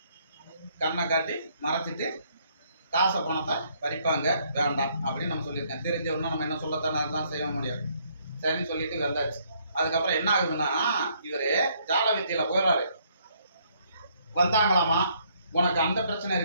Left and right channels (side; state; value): both; inverted; correlation -0.68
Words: கண்ணை காட்டி மறைச்சிட்டு காசை பணத்தை பறிப்பாங்க, வேண்டாம் அப்படின்னு நம்ம சொல்லியிருக்கேன். தெரிஞ்சவொன்னா நம்ம என்ன சொல்லத்தானே அதுதான் செய்ய முடியும். சரின்னு சொல்லிட்டு வந்தாச்சு. அதுக்கப்புறம் என்ன ஆகுதுன்னா இவர் ஜால வித்தையில போயிடுறாரு. வந்தாங்களாமா, உனக்கு அந்த பிரச்சனை